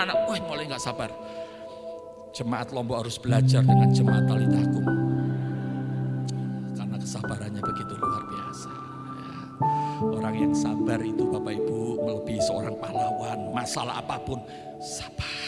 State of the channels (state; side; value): identical; both; correlation 1.00